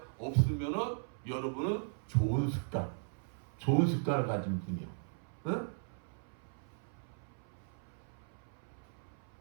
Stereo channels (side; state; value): left; silent; 53 dB below the other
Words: 없으면은 여러분은 좋은 습관을 가진 분이요. 응?